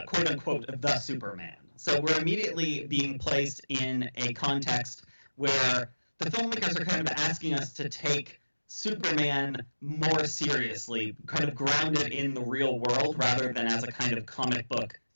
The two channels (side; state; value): both; inverted; correlation -1.00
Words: quote-unquote the Superman. So we're immediately being placed in a context where the filmmakers are kind of asking us to take Superman more seriously, kind of grounded in the real world rather than as a kind of comic book